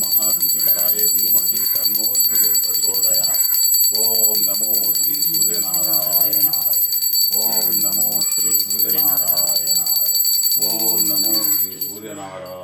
మహాద్యుతికరాయ ధీమహి తన్నో సూర్యం ప్రచోదయాత్. ఓం నమో శ్రీ సూర్యనారాయణాయ. ఓం నమో శ్రీ సూర్యనారాయణాయ. ఓం నమో శ్రీ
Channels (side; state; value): both; identical; correlation 1.00